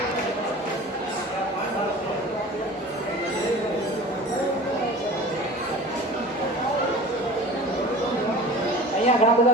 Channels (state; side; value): normal; both; correlation 0.40